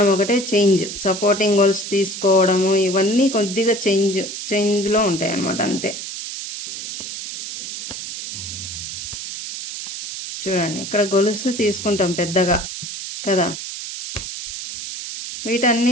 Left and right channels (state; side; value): noise; right; hiss, 8 dB below the sound